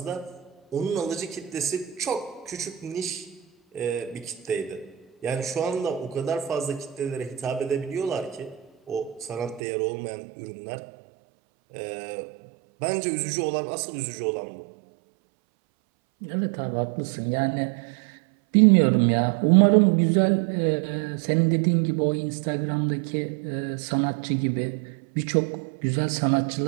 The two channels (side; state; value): left; drops out; at 9.6 s